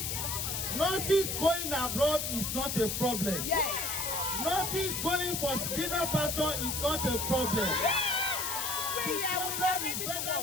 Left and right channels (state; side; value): noise; left; hiss, 2 dB below the sound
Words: Nurses going abroad is not a problem. Nurses going for greener pasture is not a problem. The problem is federal